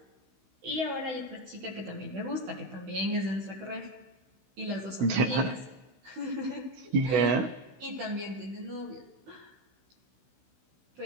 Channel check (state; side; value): late; left; 16 ms